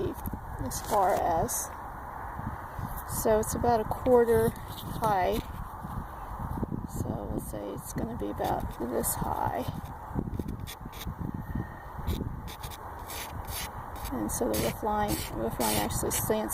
as far as. So it's about 1/4 high. So we'll say it's going to be about this high. And so the roof line actually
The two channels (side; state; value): both; identical; correlation 1.00